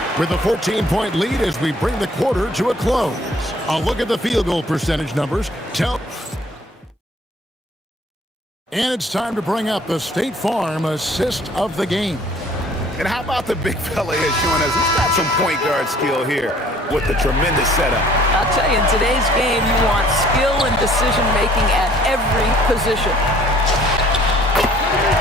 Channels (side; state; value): both; normal; correlation 0.56